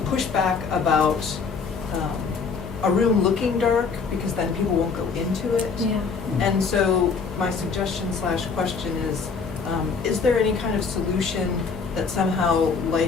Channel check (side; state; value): right; quieter; 5.2 dB